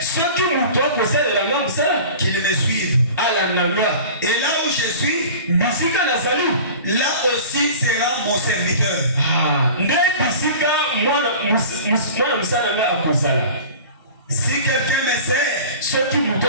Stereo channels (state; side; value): inverted; both; correlation -0.39